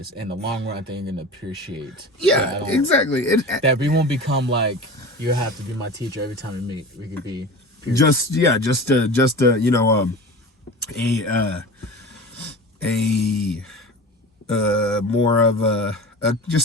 In the long run, I think you're gonna appreciate. Yeah, exactly. That we won't become like, you have to be my teacher every time we meet. We could be peers. Just you know, more of a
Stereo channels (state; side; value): normal; both; correlation 0.34